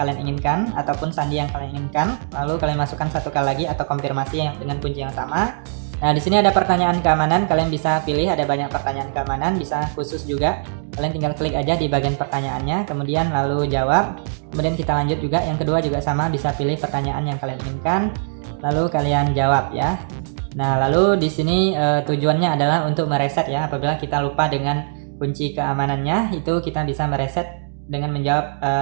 inginkan ataupun sandi yang kalian inginkan. Lalu kalian masukkan satu kali lagi atau konfirmasi yang dengan kunci yang sama. Nah, di sini ada pertanyaan keamanan. Kalian bisa pilih, ada banyak pertanyaan keamanan, bisa khusus juga. Kalian tinggal klik aja di bagian pertanyaannya, kemudian lalu jawab. Kemudian kita lanjut juga. Yang kedua juga sama, bisa pilih pertanyaan yang kalian inginkan, lalu kalian jawab ya. Nah, lalu di sini tujuannya adalah untuk mereset ya. Apabila kita lupa dengan kunci keamanannya, itu kita bisa mereset dengan menjawab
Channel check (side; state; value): left; silent; digital silence